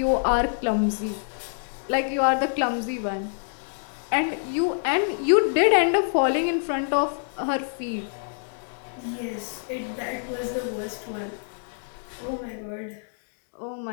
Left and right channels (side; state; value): right; silent; digital silence